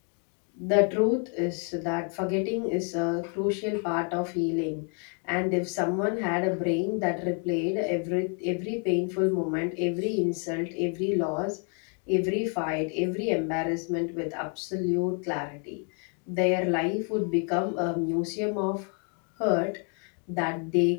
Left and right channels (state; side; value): quieter; right; 39.8 dB